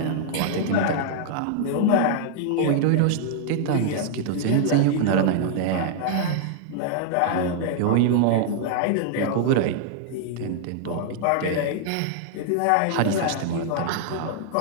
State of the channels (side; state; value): both; different; correlation -0.01